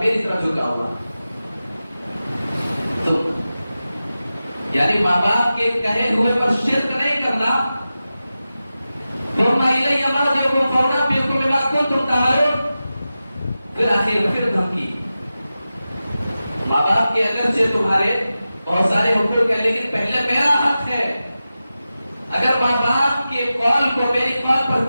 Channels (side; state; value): both; inverted; correlation -0.94